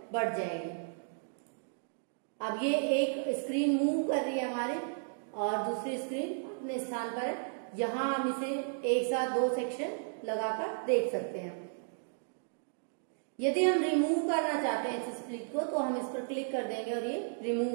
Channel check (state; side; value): silent; left; digital silence